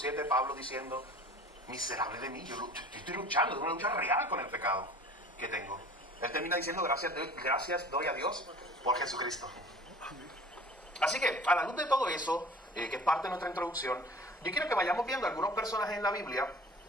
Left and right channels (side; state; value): both; normal; correlation 0.45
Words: Pablo diciendo: miserable de mí, yo estoy luchando, es una lucha real con el pecado que tengo? Él termina diciendo: gracias doy a Dios por Jesucristo. Así que, a la luz de todo eso, que es parte de nuestra introducción, yo quiero que vayamos viendo algunos personajes en la Biblia,